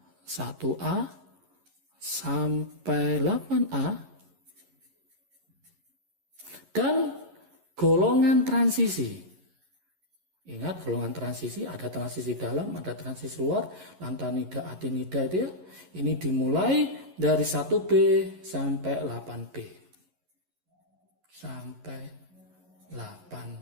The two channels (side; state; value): left; late; 11 ms